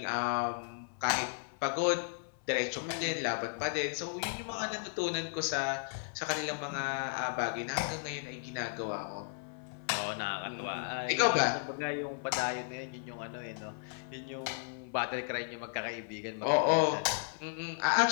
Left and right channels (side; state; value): right; silent; 55 dB below the other